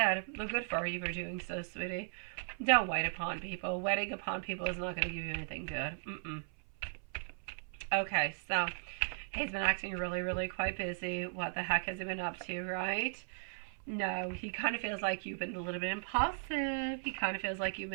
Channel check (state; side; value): silent; left; 53 dB below the other